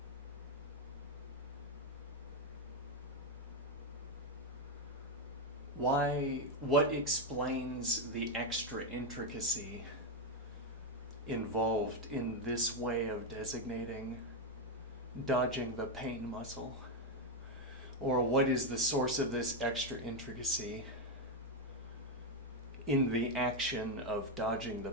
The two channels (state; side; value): normal; both; correlation 0.05